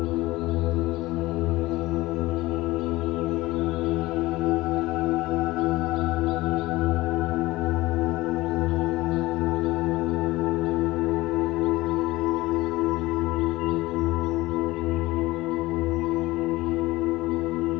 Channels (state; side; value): quieter; right; 19.2 dB